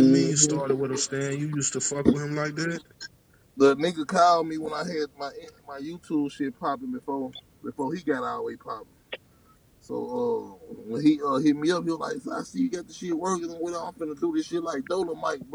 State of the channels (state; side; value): identical; both; correlation 1.00